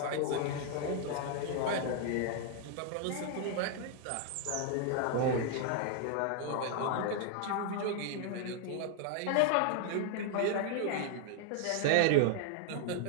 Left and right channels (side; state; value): both; different; correlation 0.00